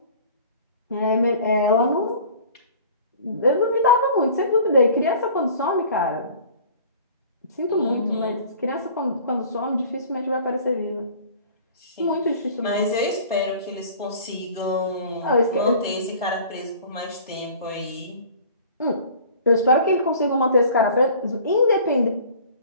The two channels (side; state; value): both; inverted; correlation -0.46